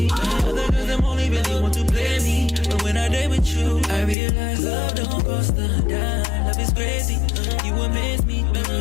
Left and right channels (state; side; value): drops out; right; at 4.2 s